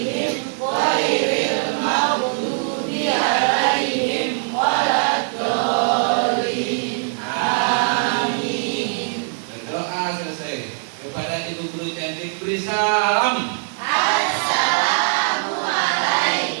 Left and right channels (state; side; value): silent; left; digital silence